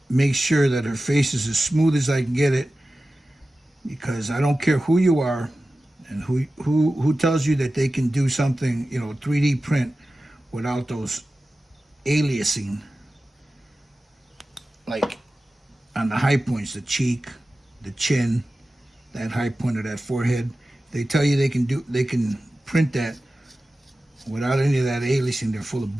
make sure that her face is as smooth as I can get it, because I don't care who you are and who tells you that they can do something, 3D print without those aliasing, like on the high points, the cheek, the chin, that high point of that forehead. They tell you they can print that without any of that aliasing. They're full of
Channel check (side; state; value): both; normal; correlation 0.95